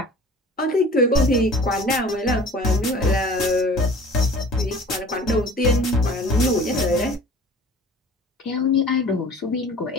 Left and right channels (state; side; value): normal; both; correlation 0.45